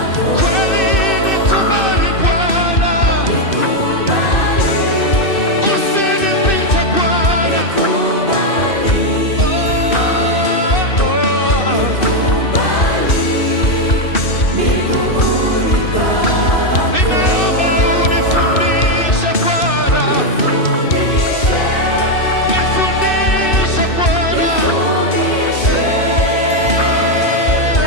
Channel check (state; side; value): late; right; 2.7 ms